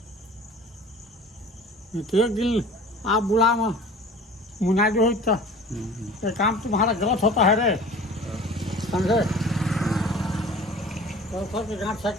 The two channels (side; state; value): both; normal; correlation 0.43